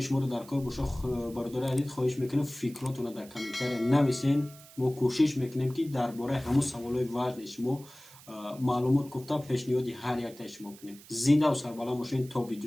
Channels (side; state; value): right; noise; hiss, 21 dB below the sound